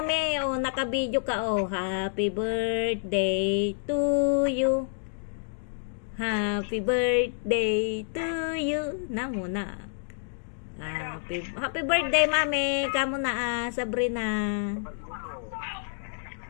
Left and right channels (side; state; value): right; silent; digital silence